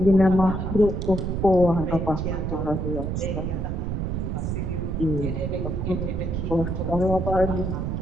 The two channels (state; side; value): noise; right; rumble, 2 dB below the sound